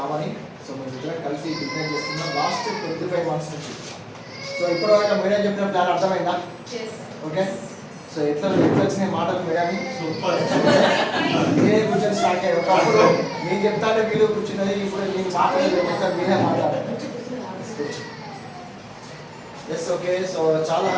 సో మేము ఇద్దరం కలిసి బిజినెస్ చేస్తున్నాం లాస్ట్ 25 months నుంచి. సో ఇప్పటివరకు మేడం చెప్పిన ప్లాన్ అర్థమైందా? ఓకే. సో ఎట్లా వచ్చిన మాటలు మేడం మీరే కూర్చొని స్టార్ట్ అయ్యారు. ఒకప్పుడు నేను చెప్తానే వీళ్ళు కూర్చున్నది, ఇప్పుడు నేను మాట్లాడలేదు, మీరే మాట్లాడారు. Yes okay. సో చాలా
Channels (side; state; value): both; identical; correlation 1.00